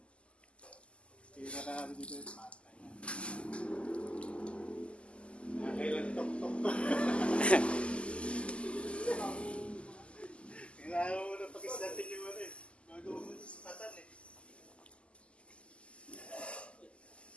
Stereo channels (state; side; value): late; right; 0.055 ms